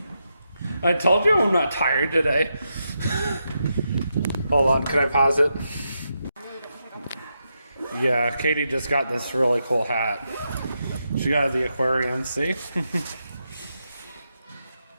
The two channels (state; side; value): inverted; both; correlation -0.85